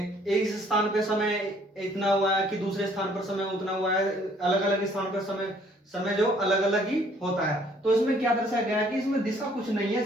स्थान पे समय इतना हुआ है कि दूसरे स्थान पर समय उतना हुआ है। अलग अलग स्थान पर समय समय जो अलग अलग ही होता है। तो इसमें क्या दर्शाया गया है कि इसमें दिशा कुछ नहीं है,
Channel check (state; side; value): normal; both; correlation 0.61